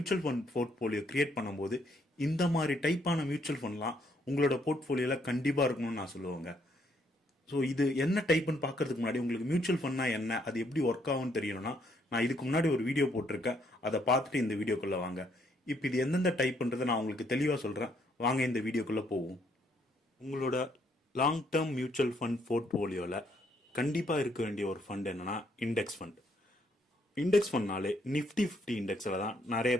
ஃபண்ட் போர்ட்ஃபோலியோ கிரியேட் பண்ணும்போது இந்த மாதிரி டைப்பான மியூச்சுவல் ஃபண்ட்லாம் உங்களோட போர்ட்ஃபோலியோவில் கண்டிப்பாக இருக்கணும்னு நான் சொல்லுவேங்க. ஸோ இது என்ன டைப்புன்னு பார்க்கறதுக்கு முன்னாடி உங்களுக்கு மியூச்சுவல் ஃபண்ட்னா என்ன, அது எப்படி ஒர்க் ஆகும்னு தெரியணும்னா நான் இதுக்கு முன்னாடி ஒரு வீடியோ போட்டிருக்கேன், அதை பார்த்துட்டு இந்த வீடியோக்குள்ளே வாங்க. இப்போ இது எந்தெந்த டைப்ன்றதை நான் உங்களுக்கு தெளிவாக சொல்கிறேன். வாங்க இந்த வீடியோக்குள்ளே போவோம். உங்களோட லாங் டேர்ம் மியூச்சுவல் ஃபண்ட் போர்ட்ஃபோலியோவில் கண்டிப்பாக இருக்க வேண்டிய ஒரு ஃபண்ட் என்னன்னா இண்டெக்ஸ் ஃபண்ட். இண்டெக்ஸ் ஃபண்ட்னாலே நிஃப்டி 50 இண்டெக்ஸில் தான் நிறைய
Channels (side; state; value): both; normal; correlation 0.70